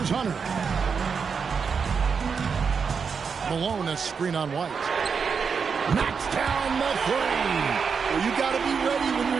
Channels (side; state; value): left; quieter; 5.9 dB